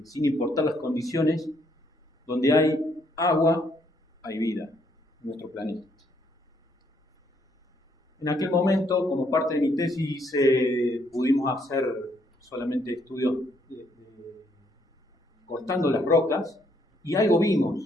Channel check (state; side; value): normal; both; correlation 0.71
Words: sin importar las condiciones, donde hay agua, hay vida en nuestro planeta. En aquel momento, como parte de mi tesis, pudimos hacer solamente estudios cortando las rocas, y algo